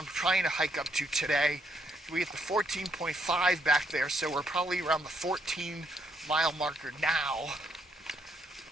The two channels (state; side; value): normal; both; correlation 0.74